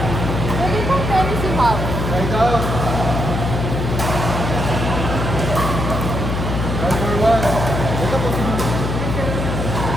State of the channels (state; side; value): noise; left; hum, 2 dB below the sound